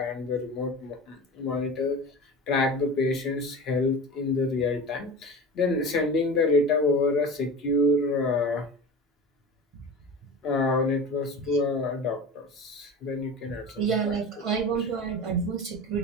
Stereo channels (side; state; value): both; normal; correlation 0.32